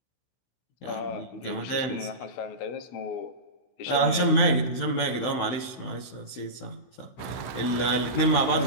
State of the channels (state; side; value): late; right; 16 ms